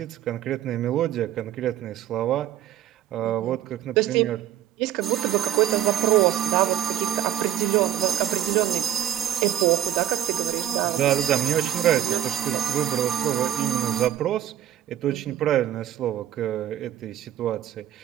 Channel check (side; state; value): left; quieter; 11.7 dB